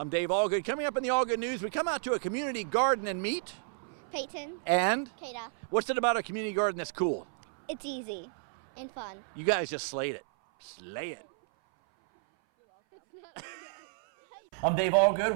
Dave Allgood. Coming up in the All Good News, we come out to a community garden and meet Peyton. And Kata. What's it about a community garden that's cool? It's easy and fun. You guys just slayed it. Slay it. I'm Dave Allgood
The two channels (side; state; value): left; silent; 57 dB below the other